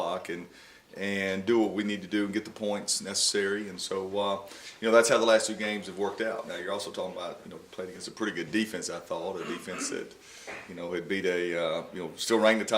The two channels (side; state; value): both; identical; correlation 1.00